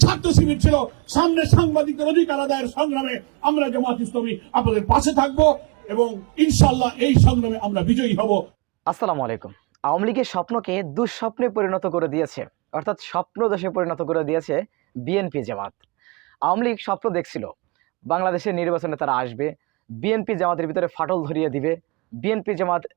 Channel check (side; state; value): left; quieter; 26.3 dB